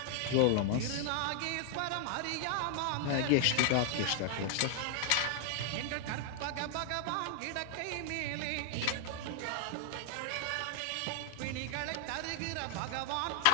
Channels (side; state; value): both; different; correlation 0.00